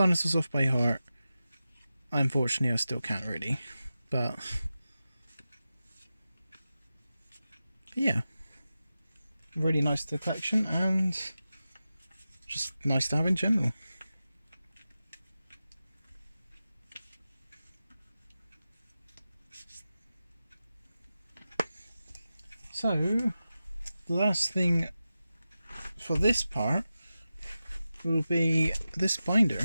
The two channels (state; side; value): inverted; both; correlation -0.93